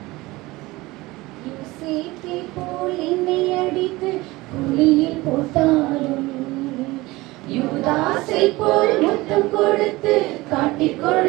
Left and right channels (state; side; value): quieter; left; 20.6 dB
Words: யோசேப்பை போல் என்னை அடித்து குழியில் போட்டாலும், யூதாசை போல் முத்தம் கொடுத்து காட்டிக்